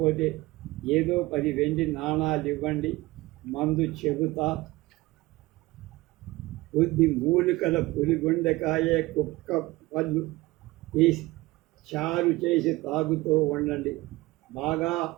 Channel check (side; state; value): left; quieter; 20.3 dB